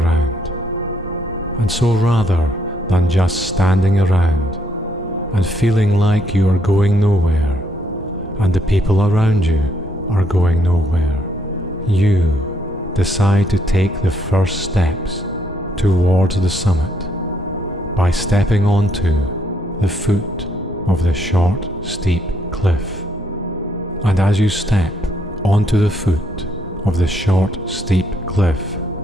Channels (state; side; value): normal; both; correlation 0.72